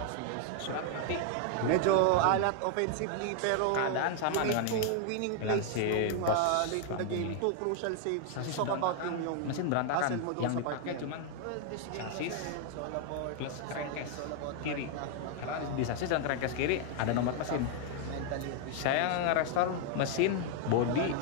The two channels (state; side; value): different; both; correlation 0.00